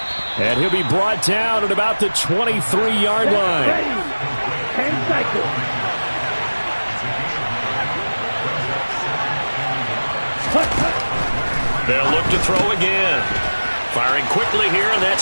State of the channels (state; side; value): inverted; both; correlation -1.00